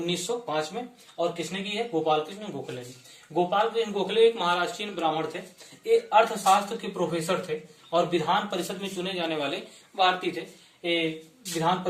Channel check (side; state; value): both; identical; correlation 1.00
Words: में। और किसने की है? गोपाल कृष्ण गोखले ने। गोपाल कृष्ण गोखले एक महाराष्ट्रीयन ब्राह्मण थे, एक अर्थशास्त्र के प्रोफेसर थे और विधान परिषद में चुने जाने वाले भारतीय थे। विधान